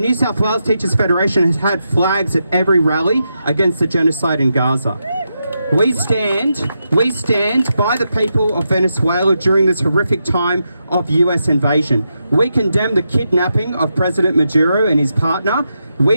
South Wales Teachers Federation has had flags at every rally against the genocide in Gaza. We stand by the people of Venezuela during this horrific time of US invasion. We condemn the kidnapping of President Maduro and his partner.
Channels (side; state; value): both; inverted; correlation -0.85